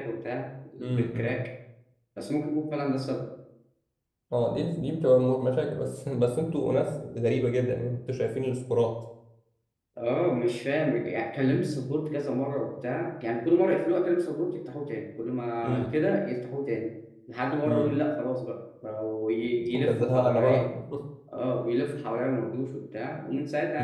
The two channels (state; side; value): identical; both; correlation 1.00